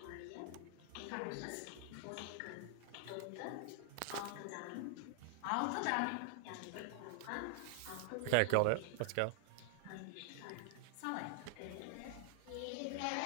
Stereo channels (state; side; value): different; both; correlation 0.00